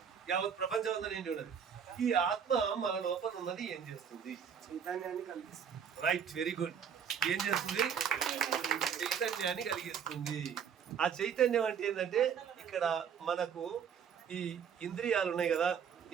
యావత్ ప్రపంచం అంతా నిండి ఉన్నది. ఈ ఆత్మ మన లోపల ఉన్నది ఏం చేస్తుంది? చైతన్యాన్ని కలిగిస్తుంది. Right, very good. ఏం చేస్తుంది? చైతన్యాన్ని కలిగిస్తుంది. ఆ చైతన్యం అంటే ఏంటంటే ఇక్కడ మనకు ఈ ఇంద్రియాలు ఉన్నాయి కదా.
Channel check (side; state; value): left; quieter; 7.6 dB